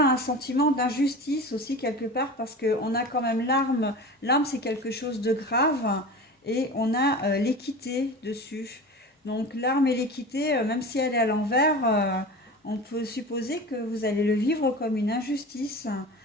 un sentiment d'injustice aussi quelque part parce qu'on a quand même l'arme. L'arme, c'est quelque chose de grave et on a l'équité dessus. Donc l'arme et l'équité, même si elle est à l'envers, on peut supposer que vous allez le vivre comme une injustice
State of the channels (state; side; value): normal; both; correlation 0.33